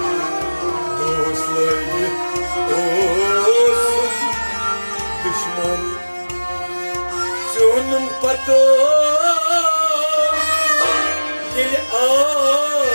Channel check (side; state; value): both; inverted; correlation -1.00